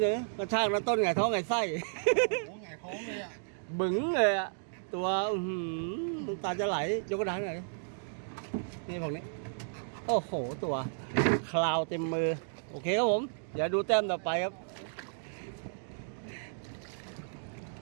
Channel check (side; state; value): left; silent; digital silence